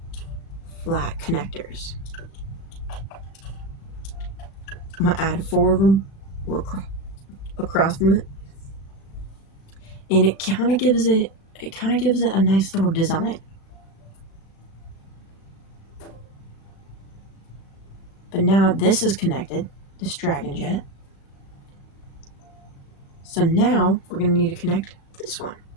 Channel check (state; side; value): late; right; 36 ms